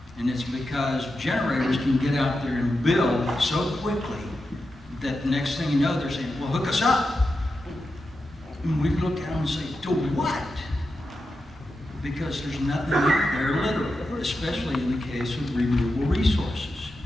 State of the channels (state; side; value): normal; both; correlation 0.89